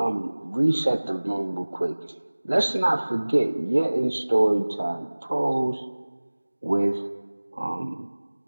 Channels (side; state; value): both; inverted; correlation -1.00